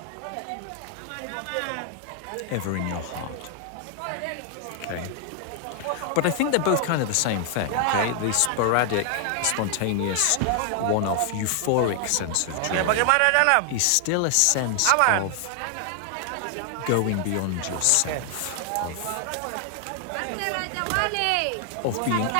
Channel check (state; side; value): different; both; correlation 0.00